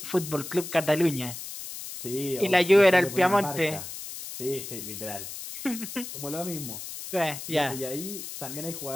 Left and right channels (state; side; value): noise; left; hiss, 9 dB below the sound